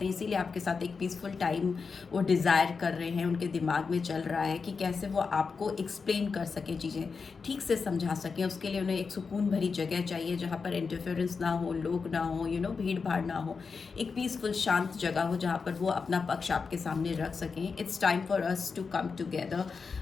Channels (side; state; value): right; quieter; 5.1 dB